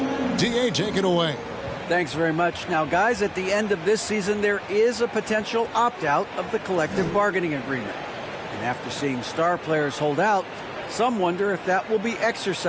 DA, take it away. Thanks very much. Now, guys, at the end of this season, there is a potential opt-out of the collective bargaining agreement. And after seeing star players hold out, some wonder if that will be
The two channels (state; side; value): identical; both; correlation 1.00